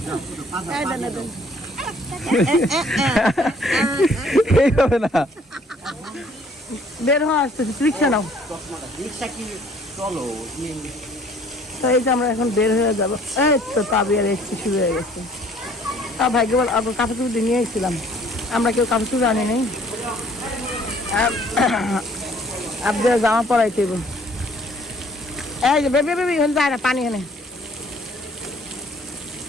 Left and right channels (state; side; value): normal; both; correlation 0.58